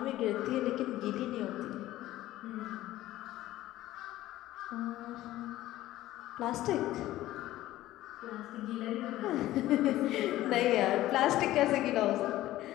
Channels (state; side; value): quieter; right; 15.3 dB